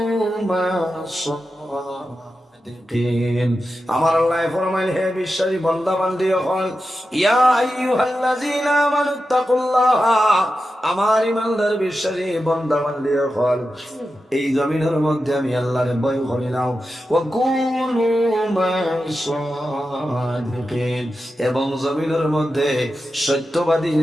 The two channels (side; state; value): both; normal; correlation 0.91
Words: مع الصادقين। আমার আল্লাহ ফরমাইল, হে বিশ্বাসী বান্দা বান্দি হল, ইয়া আইয়ুহাল্লাযীনা আমানুত্তাকুল্লাহ, আমার ঈমানদার বিশ্বাসী বান্দা বান্দি হল, এই জমিনের মধ্যে আমি আল্লাহর ভয় করি নাও। ওয়া কুনু মা'আস-সাদিকিন, এবং জমিনের মধ্যে সত্যবাদী